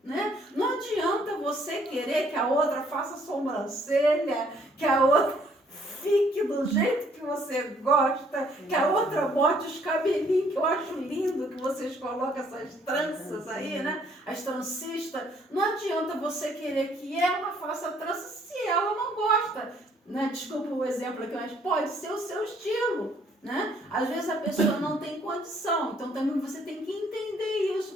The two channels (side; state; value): both; normal; correlation 0.64